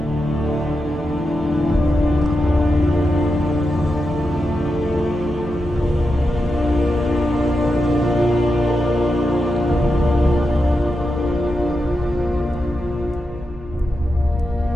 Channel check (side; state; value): both; normal; correlation 0.88